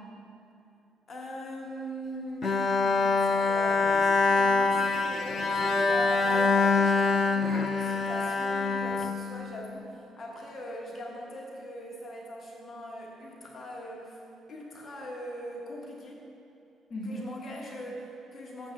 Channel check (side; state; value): right; quieter; 3.3 dB